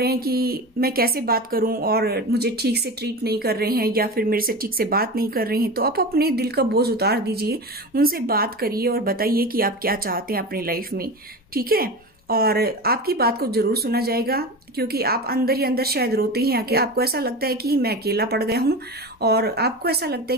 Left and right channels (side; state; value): both; normal; correlation 0.27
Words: हैं कि मैं कैसे बात करूं और मुझे ठीक से ट्रीट नहीं कर रहे हैं या फिर मेरे से ठीक से बात नहीं कर रहे हैं, तो आप अपने दिल का बोझ उतार दीजिए, उनसे बात करिए और बताइए कि आप क्या चाहते हैं अपनी लाइफ में। ठीक है, और आपकी बात को जरूर सुना जाएगा, क्योंकि आप अंदर ही अंदर शायद रोते हैं कि आपको ऐसा लगता है कि मैं अकेला पड़ गया हूं और आपको ऐसा लगता